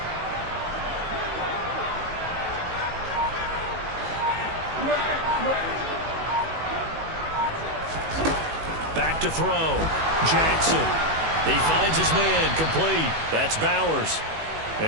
Back to throw. Jackson. He finds his man, complete. That's Bowers.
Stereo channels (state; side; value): late; left; 19 ms